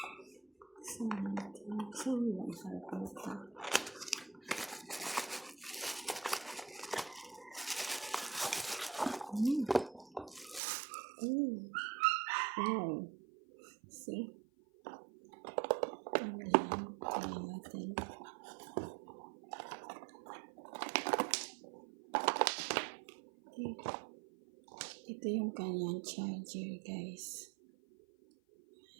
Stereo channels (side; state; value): left; drops out; at 10.6 s